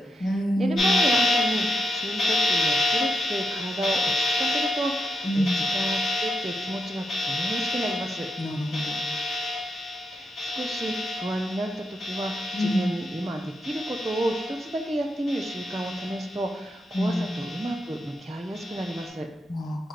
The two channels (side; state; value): both; normal; correlation 0.82